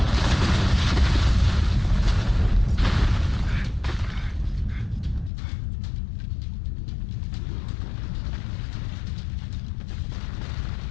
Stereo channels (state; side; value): drops out; right; at 5.3 s